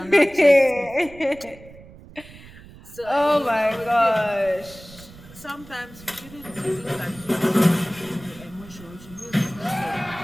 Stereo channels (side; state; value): right; noise; rumble, 20 dB below the sound